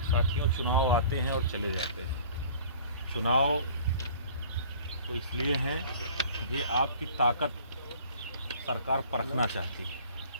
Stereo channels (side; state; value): both; inverted; correlation -0.48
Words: साथियों, चुनाव आते हैं और चले जाते हैं। चुनाव तो इसलिए हैं कि आपकी ताकत सरकार परखना चाहती है